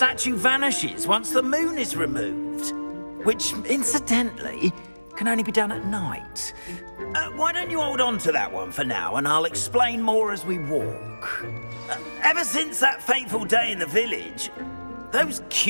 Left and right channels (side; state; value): both; inverted; correlation -1.00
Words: vanishes once the moon is removed, which, incidentally, can only be done at night. Why don't you hold on to that one for now, and I'll explain more as we walk. Ever since that fateful day in the village, those